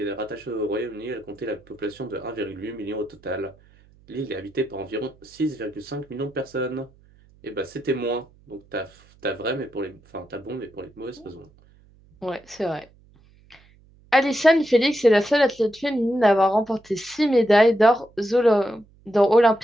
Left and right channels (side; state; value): right; noise; hum, 29 dB below the sound